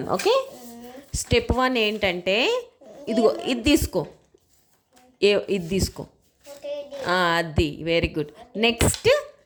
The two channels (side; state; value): both; identical; correlation 1.00